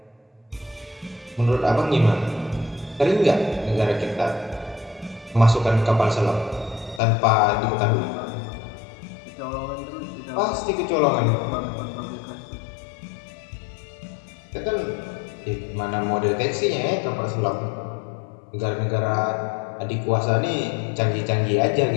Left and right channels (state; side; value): drops out; right; at 7.0 s